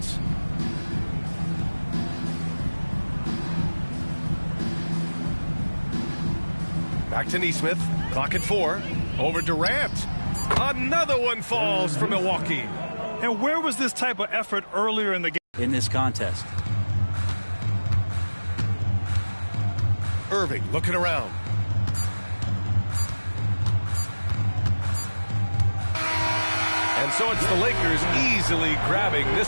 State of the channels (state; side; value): inverted; both; correlation -1.00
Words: Back to Neesmith. Clock at 4. Over Durant. Another one falls for Milwaukee. And where was this type of effort earlier in the game? In this contest. Irving looking around. And so it's the Lakers easily grabbing this